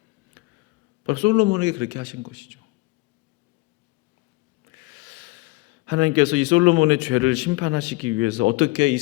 바로 솔로몬에게 그렇게 하신 것이죠. 하나님께서 이 솔로몬의 죄를 심판하시기 위해서 어떻게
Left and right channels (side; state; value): right; quieter; 22.9 dB